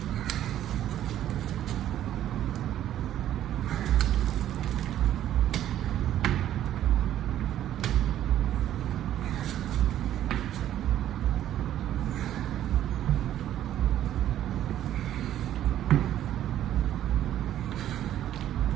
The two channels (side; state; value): left; quieter; 11.9 dB